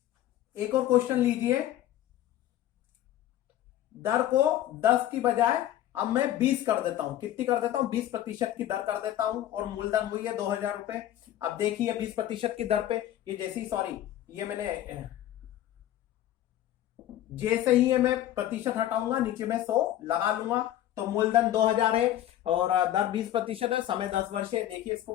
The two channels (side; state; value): right; quieter; 12.8 dB